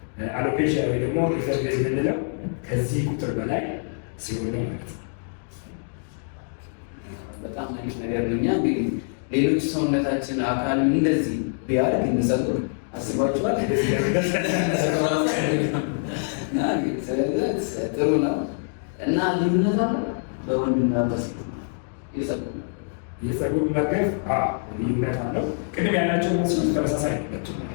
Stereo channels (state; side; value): silent; right; digital silence